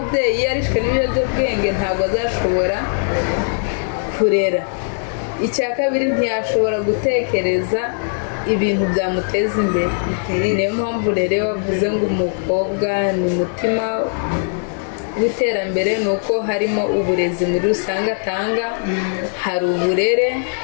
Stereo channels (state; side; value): silent; right; digital silence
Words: iyo arishwe n'ibiyobyabwenge ntabwo azashobora kurera. Icya kabiri ntiyashobora gutekereza ibintu byamuteza imbere. Niyo mpamvu rero bavuze ngo umukobwa ni umutima w'iterambere, ni uko harimo uburezi muri rusange atanga, hari uburere,